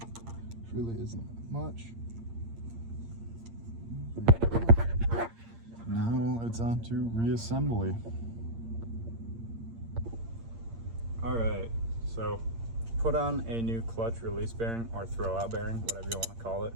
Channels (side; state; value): left; late; 8.7 ms